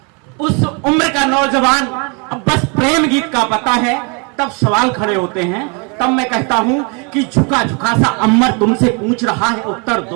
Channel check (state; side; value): quieter; left; 33.6 dB